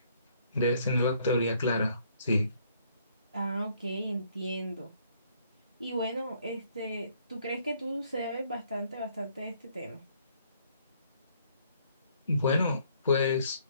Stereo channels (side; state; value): both; inverted; correlation -0.65